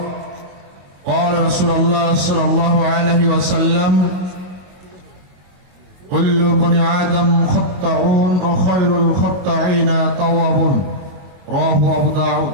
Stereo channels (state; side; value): late; left; 22 ms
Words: قال رسول الله صلى الله عليه وسلم كل بني آدم خطاؤون وخير الخطاعين توابون. رواه أبو داود.